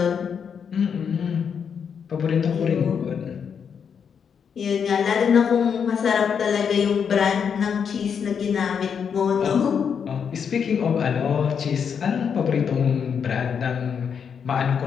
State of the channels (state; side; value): quieter; right; 7.0 dB